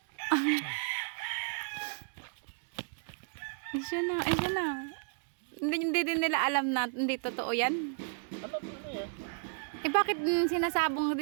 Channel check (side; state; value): left; silent; digital silence